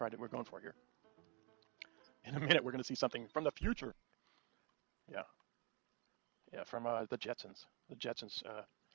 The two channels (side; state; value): left; quieter; 28.8 dB